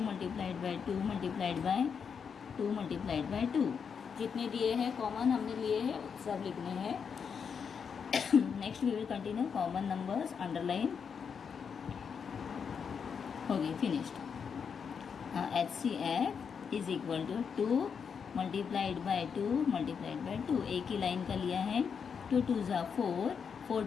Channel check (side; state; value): right; quieter; 6.5 dB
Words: multiplied by 2 multiplied by 2 multiplied by 2. जितने दिए हैं कॉमन हमने लिए हैं सब लिखने हैं। Next we will continue common numbers, underline हो गई, finished. HCF is equal to 2 multiplied by 2 multiplied by 2, एक ही लाइन का लिया है। 2 2 ज़ा 4, 4